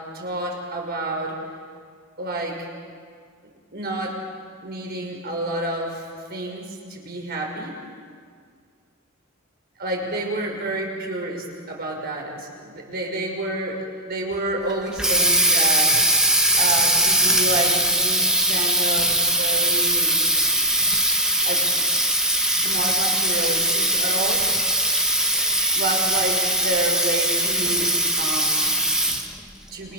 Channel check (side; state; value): both; normal; correlation -0.10